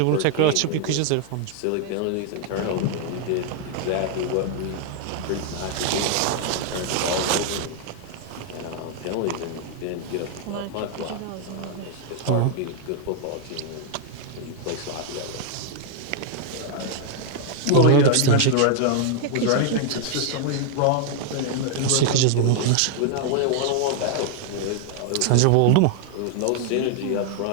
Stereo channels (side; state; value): both; different; correlation 0.00